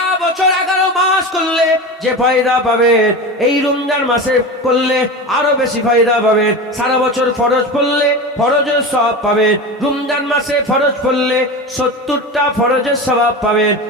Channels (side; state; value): both; normal; correlation 0.26